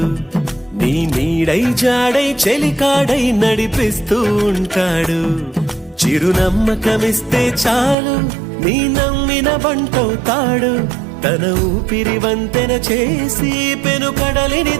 నీ నీడై జాడై చెలికాడై నడిపిస్తూ ఉంటాడు చిరునమ్మకమిస్తే చాలు నీ నమ్మిన బంటవుతాడు తన ఊపిరి వంతెన చేసి పెను కడలిని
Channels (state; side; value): drops out; left; at 8.0 s